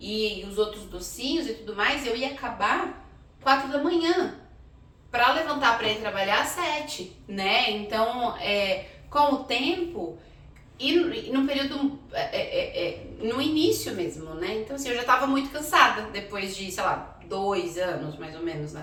os outros docinhos e tudo mais, eu ia acabar 4 da manhã. Para levantar para ir trabalhar às 7, né? Então, com o tempo e no período, no início mesmo, né? Então, assim, eu já estava muito cansada depois de, sei lá, 2 anos mais ou menos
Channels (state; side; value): identical; both; correlation 1.00